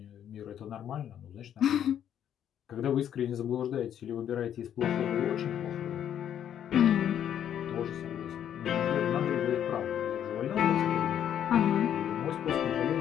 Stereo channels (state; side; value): quieter; right; 9.8 dB